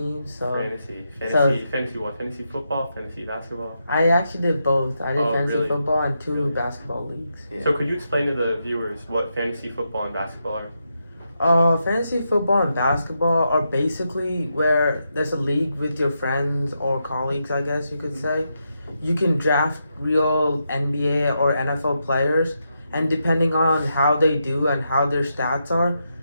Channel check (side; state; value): both; inverted; correlation -0.83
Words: so Fantasy what? Fantasy football, fantasy basketball. I actually did both. I did Oh, fantasy really? football and two Really? basketball leagues. Yeah. So could you explain to the viewers what fantasy football and basketball are? Fantasy football and basketball are basically where there's a league with your friends or colleagues, I guess you could say. You can draft real NBA or NFL players, and depending on how they do and how their stats are,